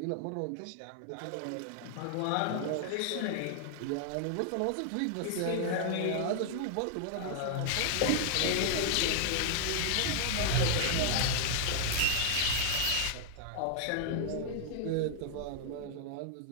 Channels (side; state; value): both; different; correlation 0.00